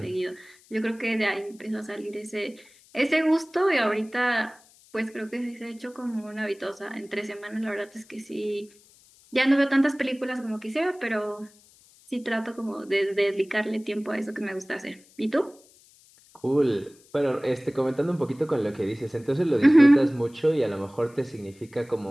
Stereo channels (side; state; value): left; noise; hiss, 28 dB below the sound